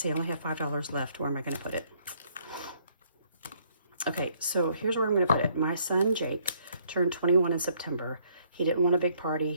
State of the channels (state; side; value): inverted; both; correlation -0.66